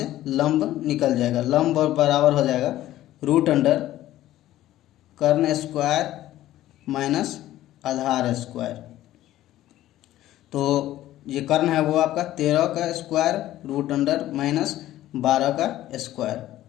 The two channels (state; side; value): quieter; right; 14.2 dB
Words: लंब निकल जाएगा। लंब बराबर हो जाएगा रूट अंडर कर्ण स्क्वायर माइनस आधार स्क्वायर। तो ये कर्ण है वो आपका 13 का स्क्वायर रूट अंडर माइनस 12 का स्क्वायर।